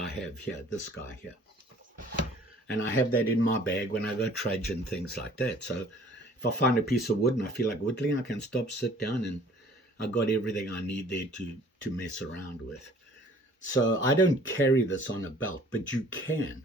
have here, this guy here. And I have that in my bag when I go trudge and things like that. So if I find a piece of wood and I feel like whittling, I can stop, sit down, and I got everything I need there to mess around with. So I don't carry this on a belt, but you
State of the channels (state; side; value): normal; both; correlation 0.53